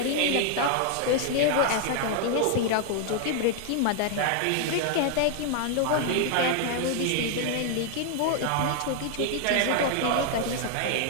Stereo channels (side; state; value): both; different; correlation 0.00